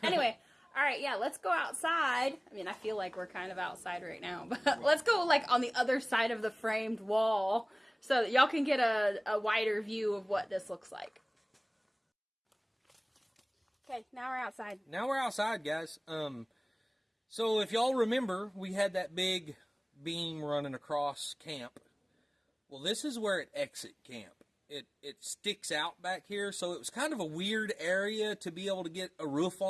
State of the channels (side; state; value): both; identical; correlation 1.00